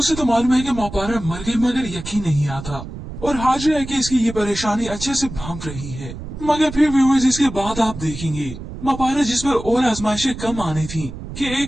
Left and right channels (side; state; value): right; noise; rumble, 11 dB below the sound